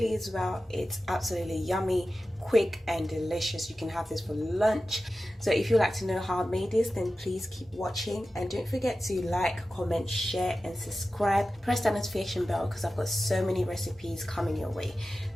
as well. It's absolutely yummy, quick and delicious. You can have this for lunch. So if you'd like to know how I made this, then please keep watching, and don't forget to like, comment, share and subscribe. Press that notification bell because I've got so many recipes coming your way.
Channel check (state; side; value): normal; both; correlation 0.94